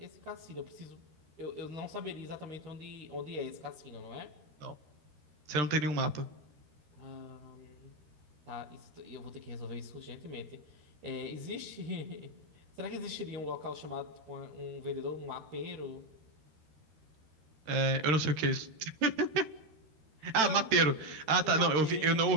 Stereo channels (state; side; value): late; left; 13 ms